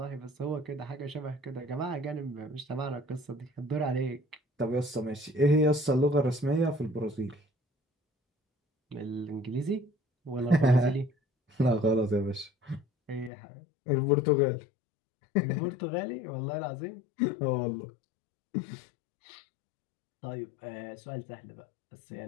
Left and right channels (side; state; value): right; drops out; at 13.3 s